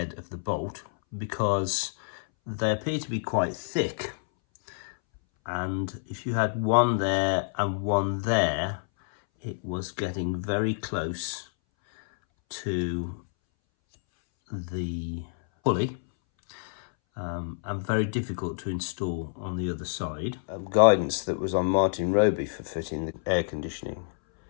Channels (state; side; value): silent; right; 59 dB below the other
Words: of the bolt, because they appear to be quite thick, and if you had one there and one there, it was getting very close to the pulley and very difficult to install on the other side. Guidance that was on Martin Roby for fitting the air conditioning.